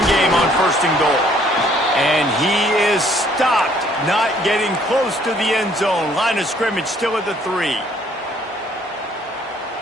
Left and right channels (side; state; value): both; normal; correlation 0.62